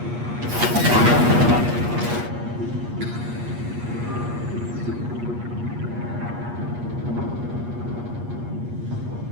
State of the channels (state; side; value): late; left; 8.4 ms